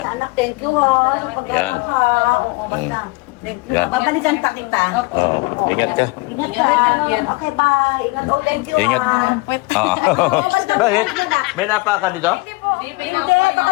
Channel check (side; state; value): right; quieter; 24.8 dB